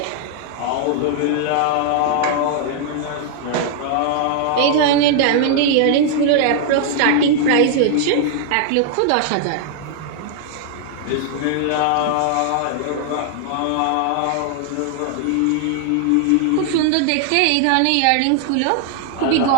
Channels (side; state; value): both; different; correlation 0.00